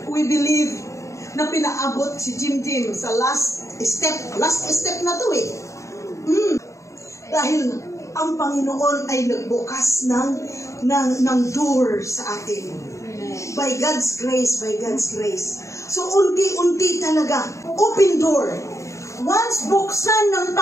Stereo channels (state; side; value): late; right; 0.15 ms